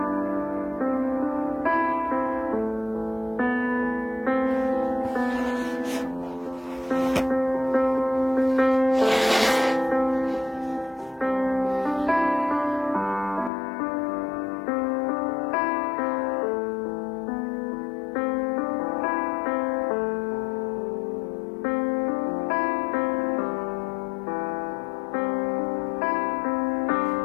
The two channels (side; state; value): right; drops out; at 13.5 s